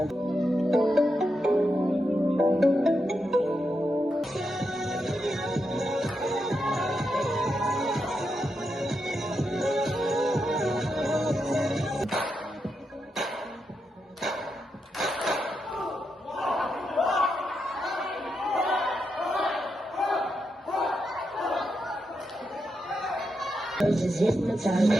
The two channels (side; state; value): both; normal; correlation 0.84